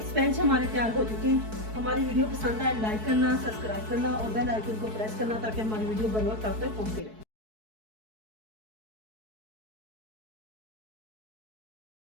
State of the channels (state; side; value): late; left; 4.6 ms